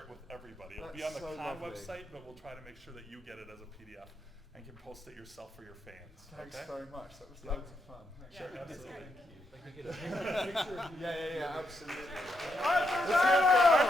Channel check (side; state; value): both; normal; correlation 0.81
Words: with everybody. It'll be That's on the so con lovely. website, but we'll try to make sure that you get it as a PDF and can post it yourself for your fans. Thanks okay? very much. That was loads of fun. Thanks. Sure, absolutely. Yeah, absolutely. Arthur